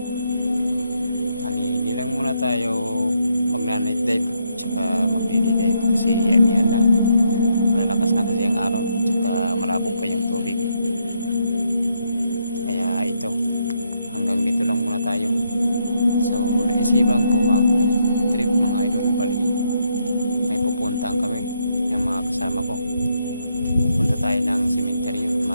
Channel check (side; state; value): both; inverted; correlation -0.76